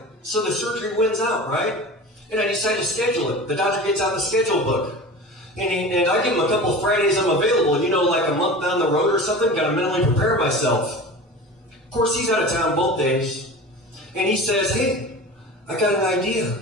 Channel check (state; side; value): normal; both; correlation 0.34